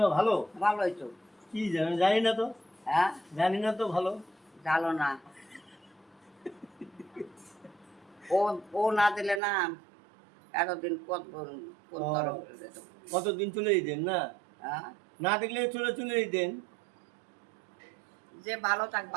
ভালো? ভালোই তো। কি জানি জানি না তো। হ্যাঁ জানি না তো ভালো। জানো না, ও ও না দিলে না এতদিন কত কোন ও, তরফ যেত। কতদিন চলে যেতেন না? হ্যাঁ না দেখলে চলে চলে যেতেন। যে ভালো থাক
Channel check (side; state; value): left; drops out; at 9.4 s